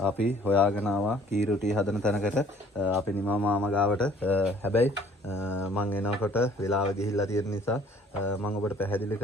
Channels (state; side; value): normal; both; correlation 0.56